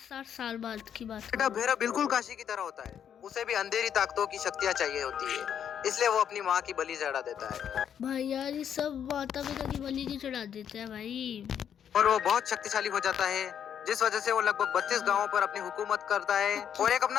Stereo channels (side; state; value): right; quieter; 8.8 dB